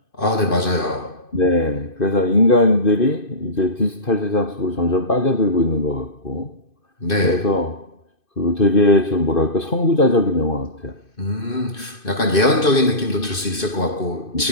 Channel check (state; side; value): late; right; 2.5 ms